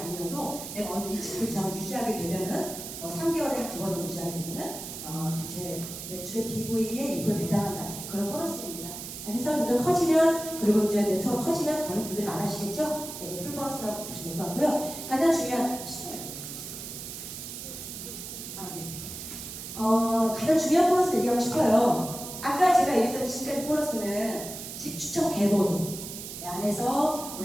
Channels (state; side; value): noise; right; hiss, 9 dB below the sound